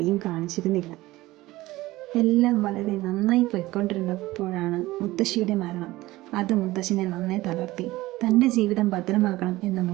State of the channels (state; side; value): quieter; left; 18.2 dB